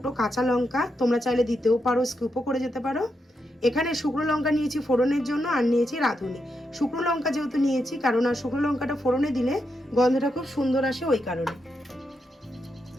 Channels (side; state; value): both; normal; correlation 0.84